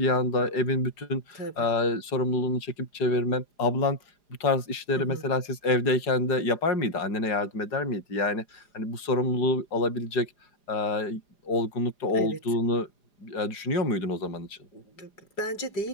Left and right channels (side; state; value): right; late; 4.9 ms